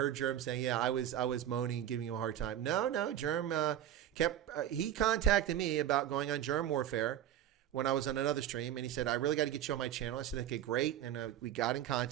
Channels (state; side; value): quieter; left; 11.5 dB